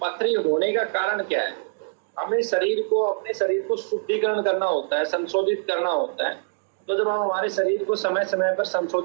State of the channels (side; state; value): left; silent; digital silence